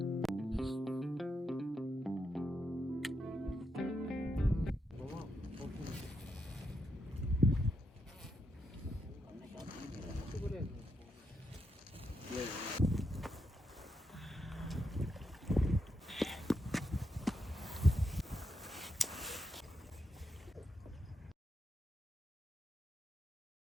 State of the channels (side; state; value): both; normal; correlation 0.82